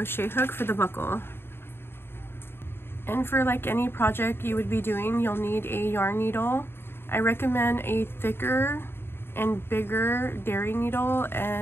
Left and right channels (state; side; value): late; right; 0.11 ms